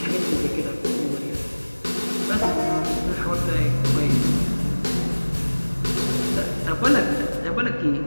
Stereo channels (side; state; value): both; inverted; correlation -1.00